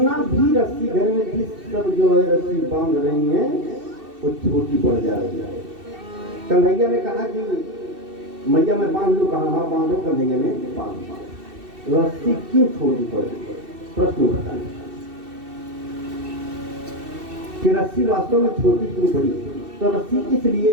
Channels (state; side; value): late; left; 2.7 ms